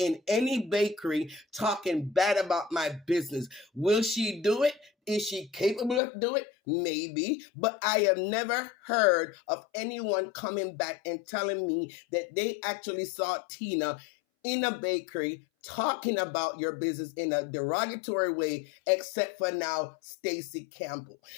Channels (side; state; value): right; drops out; at 6.0 s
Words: any bakery talking bad about my business. Will she do it? Is she capable of doing it? Maybe. But I have never heard of anyone coming back and telling me that they actually saw Tina in a bakery talking about your business in a derogatory way, except for now, Stacy Campbell.